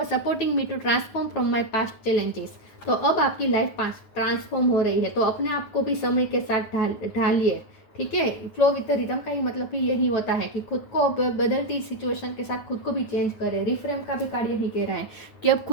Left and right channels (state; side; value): late; right; 9.4 ms